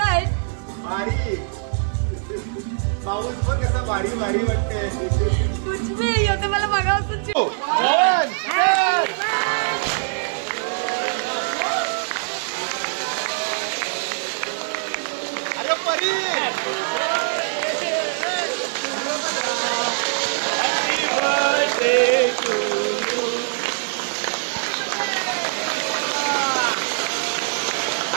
आहे? पाऊस बघ कसा भारी भारी वाटते. कुछ भी होते मला बघावं. अरे परी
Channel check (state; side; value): silent; left; digital silence